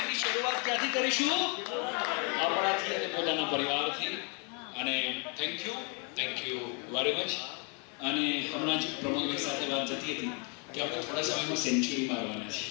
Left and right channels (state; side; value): quieter; right; 35.8 dB